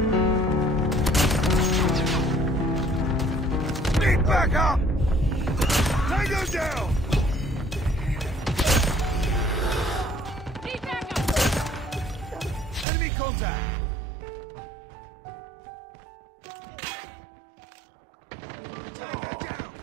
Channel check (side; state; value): left; drops out; at 12.9 s